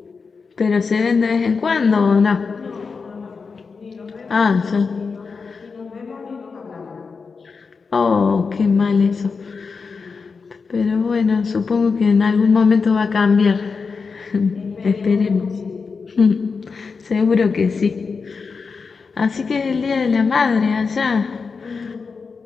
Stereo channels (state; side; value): quieter; right; 5.0 dB